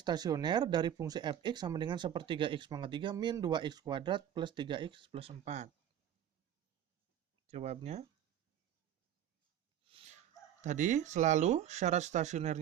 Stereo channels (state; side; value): quieter; left; 10.5 dB